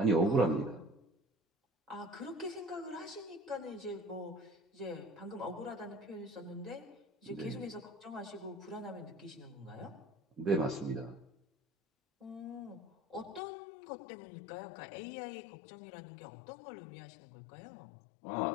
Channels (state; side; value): drops out; right; at 13.4 s